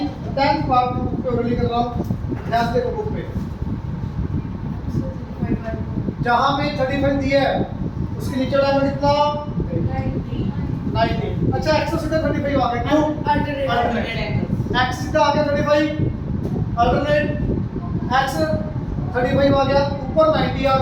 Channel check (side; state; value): both; identical; correlation 1.00